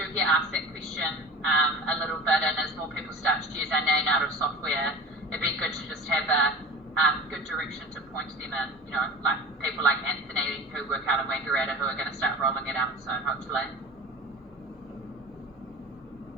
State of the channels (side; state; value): both; normal; correlation 0.36